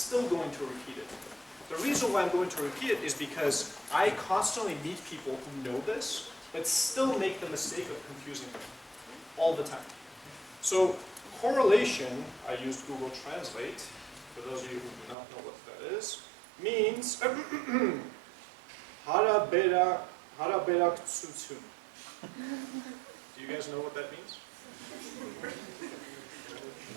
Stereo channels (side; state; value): left; drops out; at 15.2 s